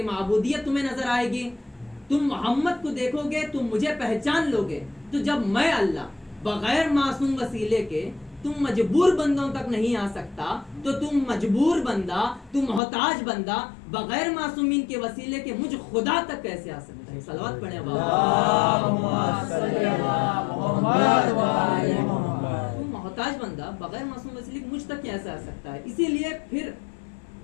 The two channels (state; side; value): drops out; right; at 12.8 s